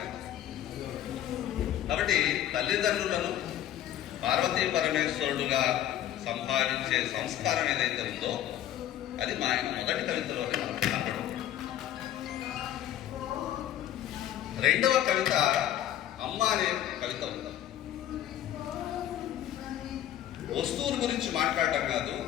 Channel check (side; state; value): right; quieter; 11.8 dB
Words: అంటే. కాబట్టి తల్లిదండ్రులను పార్వతీ పరమేశ్వరుడుగా సంపాదించే సంస్కారం ఏదైతే ఉందో అది మా ఆయన మొదటి కవితలోనే మనం కనపడం. రెండవ కవిత అమ్మ అనే కవిత ఉంది. వస్తువుల గురించి మాట్లాడటం కాదు,